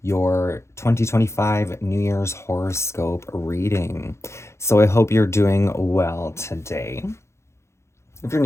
your 2025 New Year's horoscope reading. So I hope you're doing well today. If you're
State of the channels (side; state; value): right; late; 0.13 ms